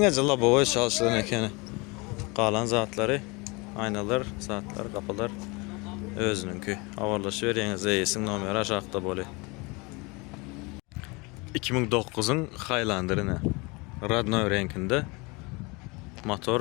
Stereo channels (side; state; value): right; quieter; 27.1 dB